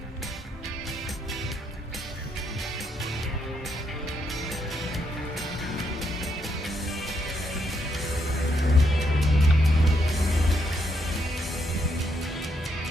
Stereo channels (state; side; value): normal; both; correlation 0.77